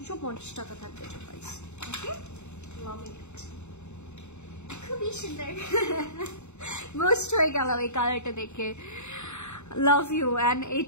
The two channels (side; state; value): right; late; 0.82 ms